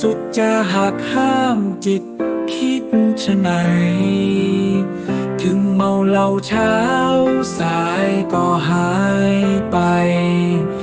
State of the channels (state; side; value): identical; both; correlation 1.00